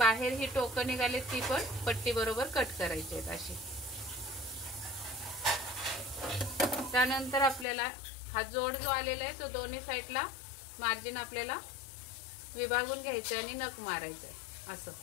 ही टोकं निघाले ती पण पट्टी बरोबर कट करायची आहेत अशी। त्यानंतर आपल्याला हा जोड जो आलेला आहे तो दोन्ही साईडला मार्जिन आपल्याला विभागून घ्यायचं आणि नख मारायचं आहे। असं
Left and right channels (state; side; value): drops out; right; at 7.7 s